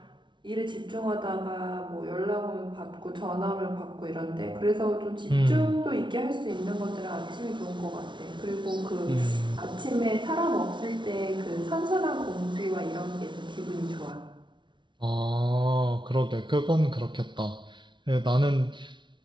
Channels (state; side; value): late; left; 0.23 ms